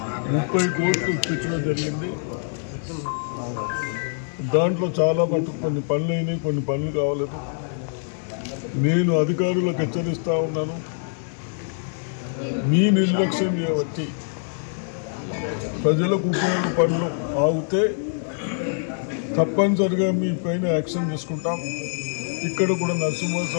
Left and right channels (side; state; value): right; silent; digital silence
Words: 30 కోట్లు ఇప్పించడం జరిగింది. దాంట్లో చాలా మటుకు కొన్ని పనులు అయినాయి, కొన్ని పనులు కావలేదు. నేను అధికారులకు హెచ్చరిస్తూ ఉన్నాను, మీ నిర్లక్ష్యం చేయబట్టి ప్రజలకు ఉపయోగ పనులు ఆగితే తప్పనిసరిగా మీ పైన యాక్షన్ తీసుకుంటాం. ఇక్కడ కూడా